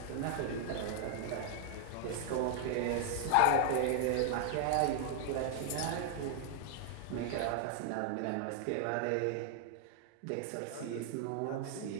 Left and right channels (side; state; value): both; different; correlation 0.00